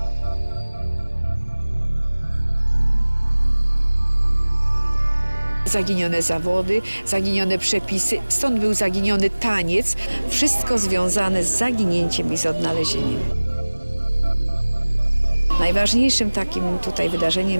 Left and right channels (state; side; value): inverted; both; correlation -1.00